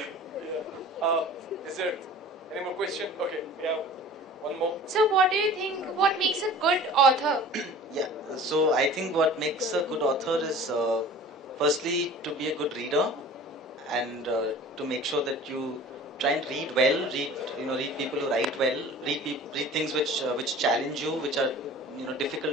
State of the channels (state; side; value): normal; both; correlation 0.43